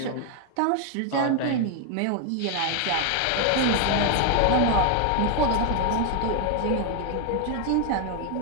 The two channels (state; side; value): different; both; correlation 0.00